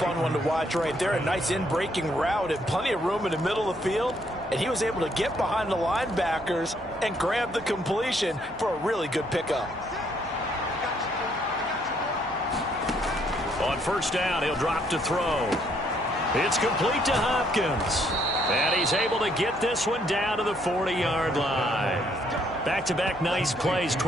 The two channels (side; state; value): right; noise; hum, 24 dB below the sound